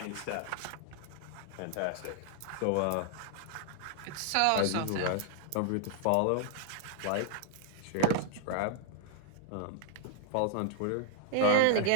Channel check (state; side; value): different; both; correlation 0.00